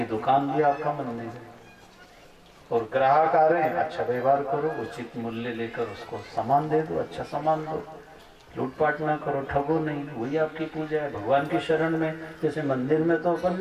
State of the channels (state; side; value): identical; both; correlation 1.00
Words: दुकान भी आपका मंदिर है। और ग्राहक आ रहे हैं, अच्छा व्यवहार करो, उचित मूल्य लेकर उसको सामान दे दो, अच्छा सामान दो, लूटपाट ना करो, ठगो नहीं, वही आपकी पूजा है। भगवान की शरण में, जैसे मंदिर में तो अपन